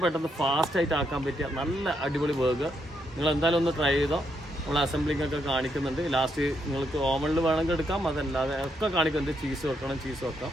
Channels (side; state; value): both; normal; correlation 0.78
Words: പെട്ടെന്ന് ഫാസ്റ്റായിട്ട് ആക്കാൻ പറ്റിയ നല്ല അടിപൊളി ബർഗർ. നിങ്ങൾ എന്തായാലും ഒന്ന് ട്രൈ ചെയ്തോ. നമ്മൾ അസംബ്ലിംഗ് ഒക്കെ കാണിക്കുന്നുണ്ട്. ലാസ്റ്റ് നിങ്ങൾക്ക് ഓവനിൽ വേണമെങ്കിൽ എടുക്കാം, അതല്ലാതെ ഒക്കെ കാണിക്കുന്നുണ്ട്. ചീസ് വെക്കാം.